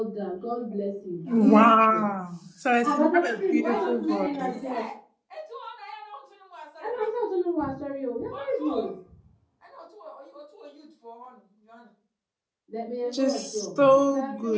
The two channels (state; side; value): identical; both; correlation 1.00